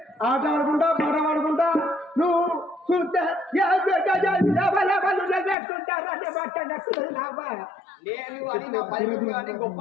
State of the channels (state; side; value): drops out; right; at 5.6 s